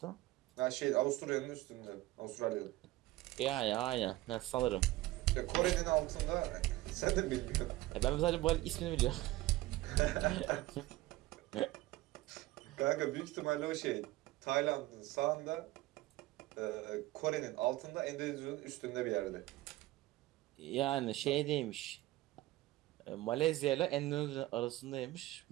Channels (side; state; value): left; quieter; 17.8 dB